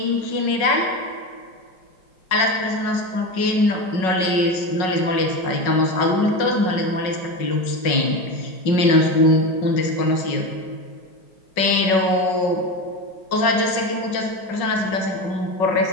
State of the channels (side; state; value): right; late; 5.4 ms